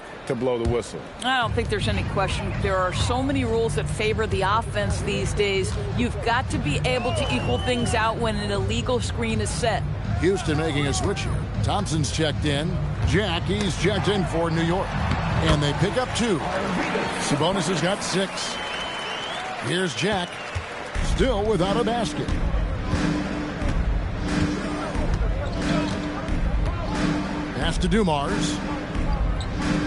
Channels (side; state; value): both; identical; correlation 1.00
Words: to blow the whistle. I don't think there's any question. There are so many rules that favor the offense these days. You've got to be able to equal things out when an illegal screen is set. Houston making a switch here. Thompson's checked in. He's checked in for New York. And they pick up 2. Sabonis has got 6. Here's Jack. Still without a basket. Pass to Dumars.